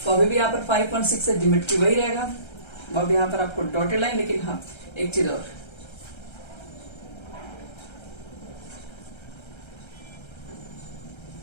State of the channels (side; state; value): right; late; 1.3 ms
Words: फॉर्म भी यहाँ पर 5.6 है, ज्योमेट्री वही रहेगा, अब यहाँ पर आपको डॉटेड लाइन, लेकिन हाँ एक चीज और,